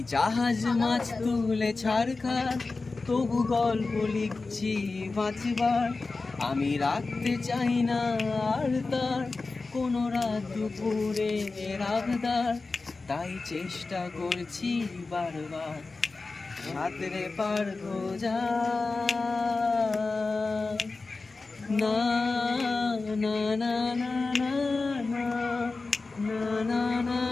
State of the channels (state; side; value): quieter; right; 3.8 dB